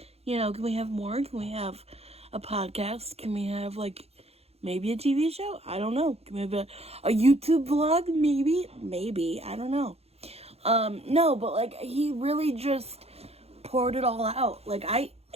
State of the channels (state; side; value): late; left; 0.29 ms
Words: we have more? Can we have a podcast? Can we have, maybe a TV show? I don't know. Can we have a YouTube vlog? Maybe. I don't know. No, but, he really just poured it all out.